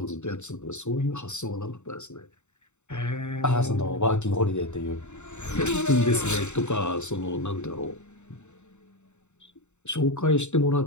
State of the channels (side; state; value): right; late; 0.83 ms